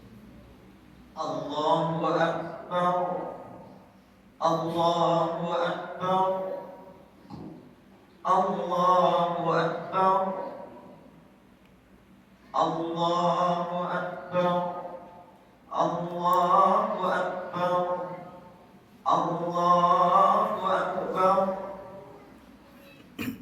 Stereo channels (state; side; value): identical; both; correlation 1.00